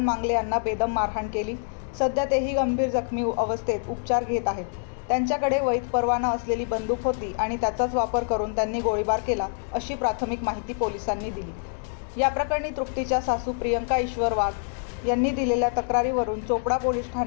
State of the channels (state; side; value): silent; right; digital silence